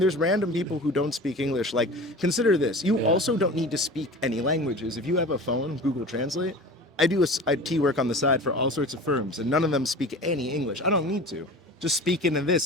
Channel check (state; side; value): normal; both; correlation 0.37